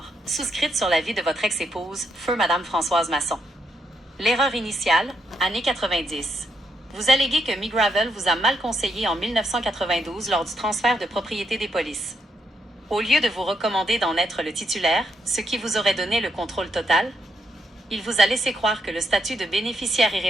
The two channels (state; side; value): normal; both; correlation 0.78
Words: souscrites sur la vie de votre ex-épouse, feu Madame Françoise Masson. L'erreur initiale, années 90. Vous alléguez que McGravel vous a mal conseillé en 1992 lors du transfert de propriété des polices. Au lieu de vous recommander d'en être le titulaire, ce qui vous aurait donné le contrôle total, il vous a laissé croire que le statut de bénéficiaire